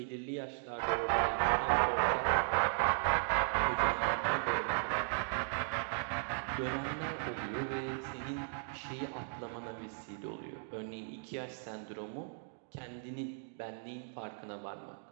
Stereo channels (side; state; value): left; silent; digital silence